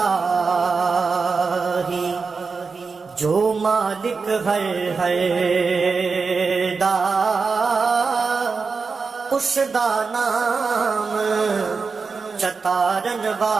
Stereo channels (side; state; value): left; quieter; 4.8 dB